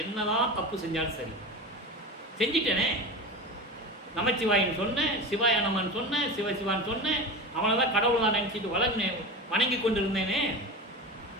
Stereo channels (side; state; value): both; normal; correlation 0.27